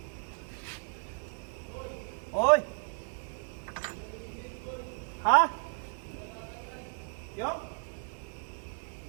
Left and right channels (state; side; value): silent; left; 55 dB below the other